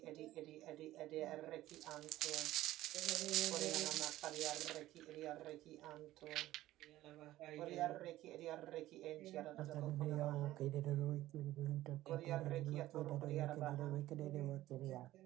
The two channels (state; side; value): quieter; left; 15.3 dB